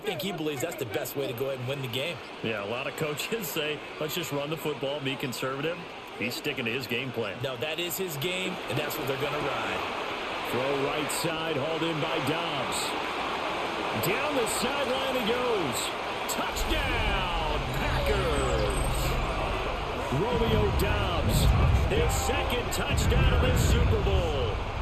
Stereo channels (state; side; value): identical; both; correlation 1.00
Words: he believes that's the best way to go ahead and win the game. Yeah, a lot of coaches say, let's just run the football, be conservative. He's sticking to his game plan. No, that is his game, and that's what they're going to ride. Throw right side, hauled in by Dobbs. Down the sideline he goes. Touchdown, Packers! Romeo Dobbs, his 2nd touchdown of this Super Bowl.